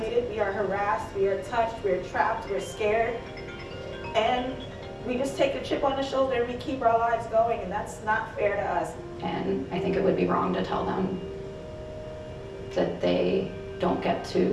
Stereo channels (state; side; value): identical; both; correlation 1.00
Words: we are harassed, we are touched, we're trapped, we're scared. And we just take a chip on the shoulder and we keep our lives going, and that's not fair to us. And I think it would be wrong to tell them that they don't get